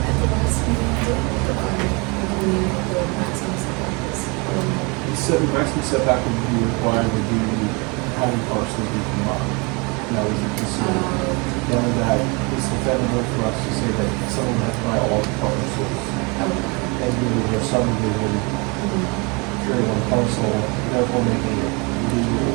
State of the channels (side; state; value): left; quieter; 29.4 dB